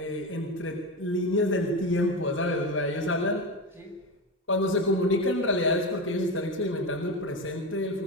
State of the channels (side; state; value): both; normal; correlation 0.20